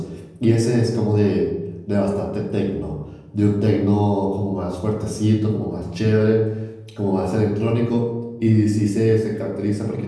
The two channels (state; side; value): identical; both; correlation 1.00